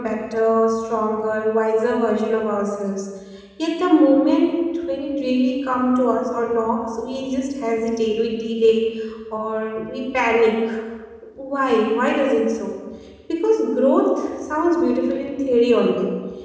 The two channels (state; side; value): identical; both; correlation 1.00